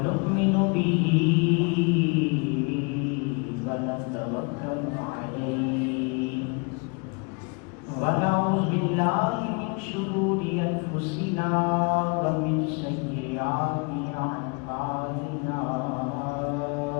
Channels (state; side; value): quieter; right; 33.5 dB